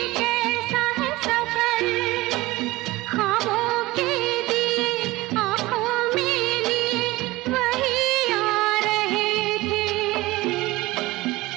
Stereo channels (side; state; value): left; quieter; 19.6 dB